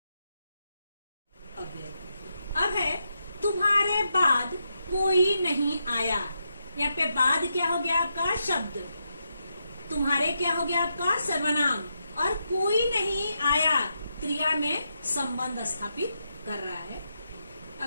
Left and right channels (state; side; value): inverted; both; correlation -0.84